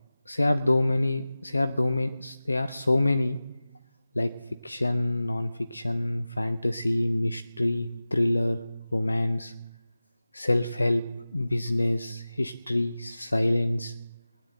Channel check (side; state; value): both; inverted; correlation -0.97